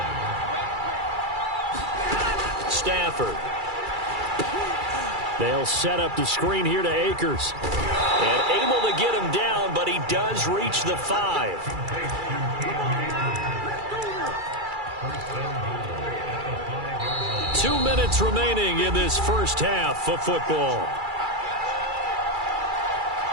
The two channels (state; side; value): late; left; 2.3 ms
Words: Stafford. They'll set up the screen here to Akers. And able to get him down, but he does reach the 5. 2 minutes remaining in this first half of football.